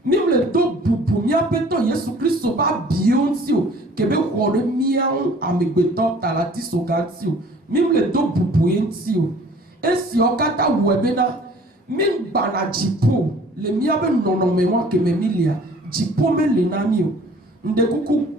même le do bubu mi apeto Yesu Kristo ba bionti o kebe wole mian amegbeto talati soganti o même le do bubu enti o esi okata webena min bana jipo le miabe nono me wa ke me milia jipo me le nami o nde kuku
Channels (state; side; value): normal; both; correlation 0.52